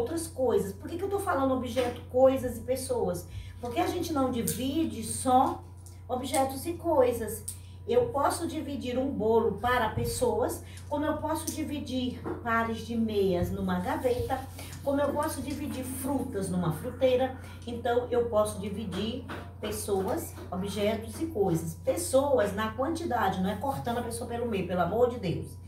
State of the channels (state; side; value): identical; both; correlation 1.00